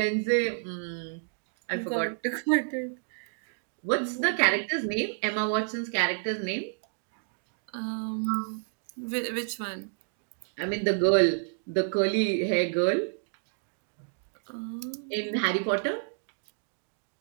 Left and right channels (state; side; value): silent; left; digital silence